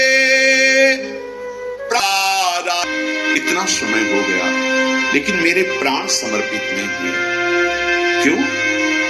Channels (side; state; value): both; identical; correlation 1.00